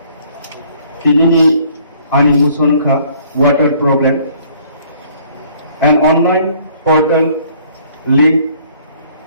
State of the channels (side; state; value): both; inverted; correlation -0.59